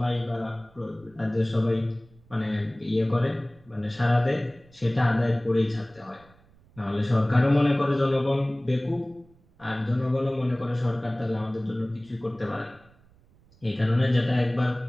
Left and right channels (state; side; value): noise; right; rumble, 29 dB below the sound